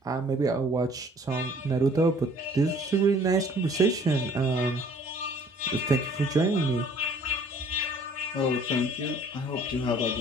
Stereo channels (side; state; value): both; normal; correlation 0.55